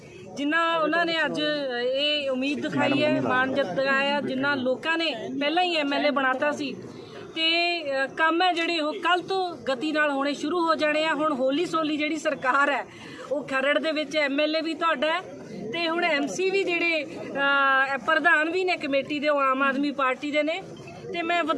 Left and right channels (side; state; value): both; identical; correlation 1.00